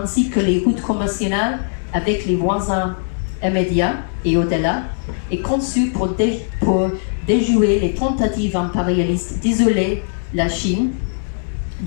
que les routes commerciales avec les voisins immédiats et au-delà, est conçue pour déjouer les tentatives impérialistes d'isoler la Chine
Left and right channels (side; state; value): right; silent; digital silence